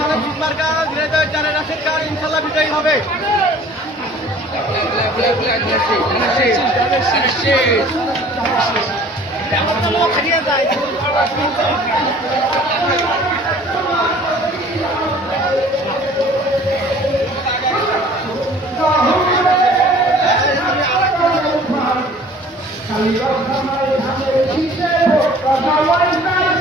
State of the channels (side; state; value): both; normal; correlation 0.50